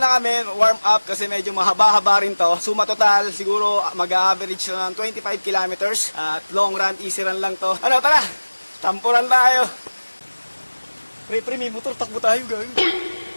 kami, warm up kasi medyo mahaba-haba rin to. Suma total, siguro mag-average ng 25 kilometers. At long run, easy run lang to. Ano, tara! Tampuran tayo! Pre, may motor, takbo tayo, gawin.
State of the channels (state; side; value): inverted; both; correlation -1.00